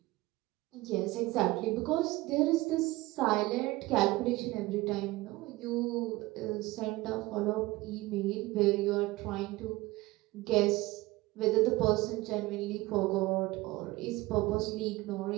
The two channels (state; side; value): quieter; left; 20.1 dB